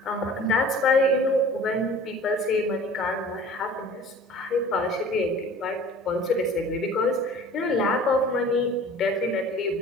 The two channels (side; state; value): both; normal; correlation 0.45